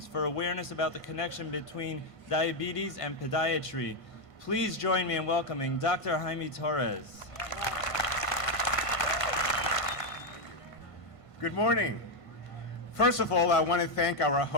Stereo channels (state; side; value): late; right; 1.5 ms